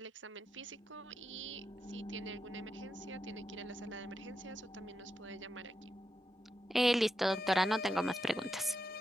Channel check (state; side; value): normal; both; correlation 0.86